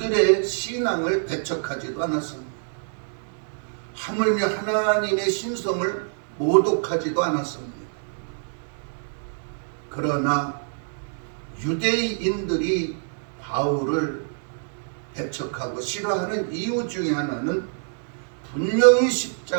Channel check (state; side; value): silent; left; 61 dB below the other